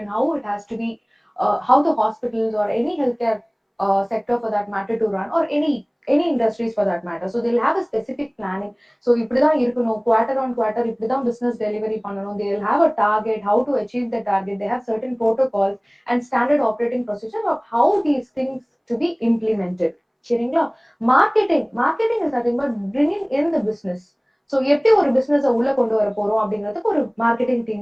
how it has to be, how the hospitals or any healthcare sector for that matter to run, or any industries for that matter. So they'll have a specific planning. So இப்படிதான் இருக்கணும், quarter on quarter இப்படிதான் business delivery பண்ணணும். They'll have a target, how to achieve the target. They have certain protocols and standard operating procedure of how these things to be implemented. சரிங்களா? Marketing is nothing but bringing in the business. So எப்படி ஒரு பிசினஸ் உள்ள கொண்டு வர போறோம் அப்படிங்கிறதுக்கு ஒரு marketing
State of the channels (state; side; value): identical; both; correlation 1.00